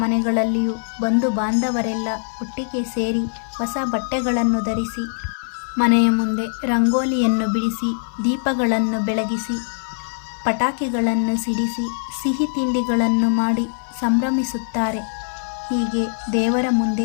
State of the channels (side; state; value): right; silent; 56 dB below the other